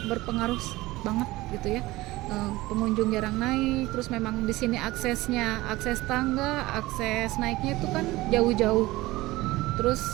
berpengaruh banget gitu ya. Pengunjung jarang naik, terus memang di sini akses tangga, akses naiknya itu kan jauh-jauh.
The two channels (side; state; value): left; quieter; 19.1 dB